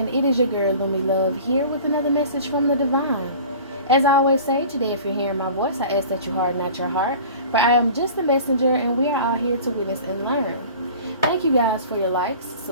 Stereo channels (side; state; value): both; inverted; correlation -0.42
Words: it is your girl, Lumi Love, here with another message from the divine. As I always say, today if you're hearing my voice, I ask that you harden not your heart, for I am just a messenger and we are all here to witness and learn. Thank you guys for your likes,